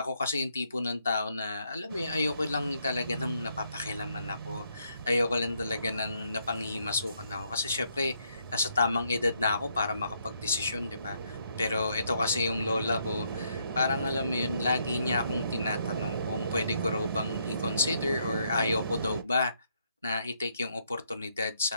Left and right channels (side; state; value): both; inverted; correlation -0.74